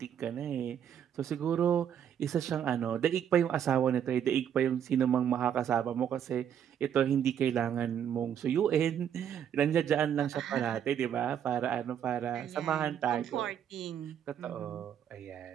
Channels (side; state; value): left; quieter; 9.1 dB